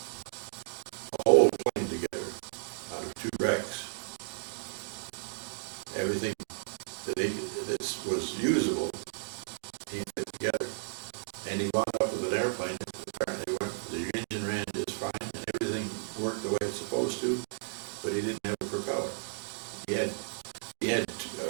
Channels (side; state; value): left; silent; digital silence